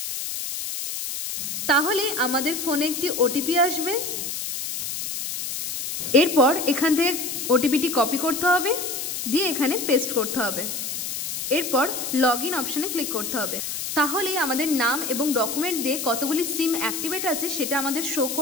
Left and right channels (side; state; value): left; noise; hiss, 4 dB below the sound